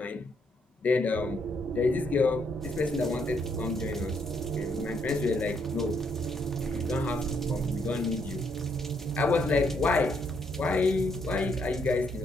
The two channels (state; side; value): normal; both; correlation 0.74